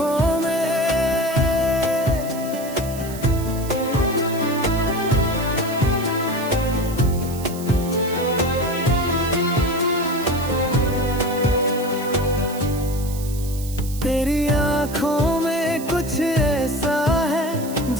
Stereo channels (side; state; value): right; noise; hiss, 14 dB below the sound